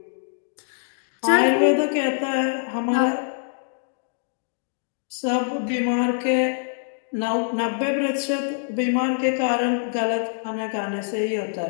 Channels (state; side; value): silent; right; digital silence